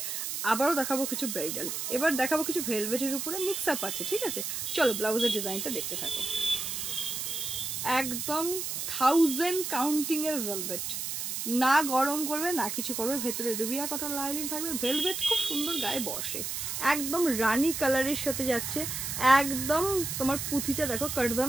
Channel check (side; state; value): right; noise; hiss, 3 dB below the sound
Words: আবারও দেখাবো কিছু ব্রাইডাল, এবার দেখাবো কিছু ভেলভেটের উপরে মিক্স আপ আছে। ঠিক আছে, চলো ব্লাউজের ডিজাইনটা দেখতে থাকো। একদম 1000 কাউন্টিংয়ের ভেলভেট, না গরম করবে না কিছু করবে, ভেতরে রুবিয়া কটন লাইনিং থাকবে, ভেলভেট খুব সুন্দর গায়ে বসে, একদম রানি কালারের সাথে যাচ্ছে। একদম তোমার পুঁথিটা দেখো